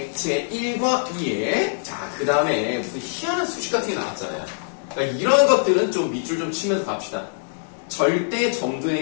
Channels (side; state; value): right; silent; digital silence